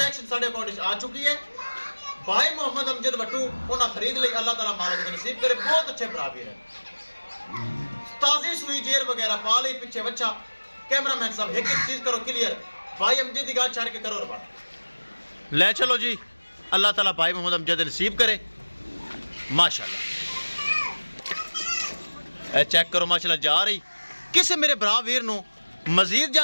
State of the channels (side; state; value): both; inverted; correlation -1.00